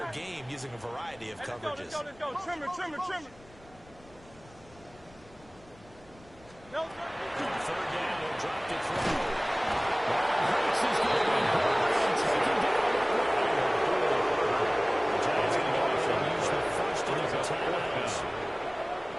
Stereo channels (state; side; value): noise; left; rumble, 25 dB below the sound